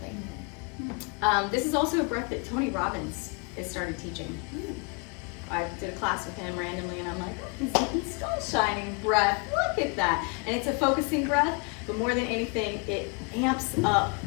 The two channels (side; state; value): right; quieter; 34.2 dB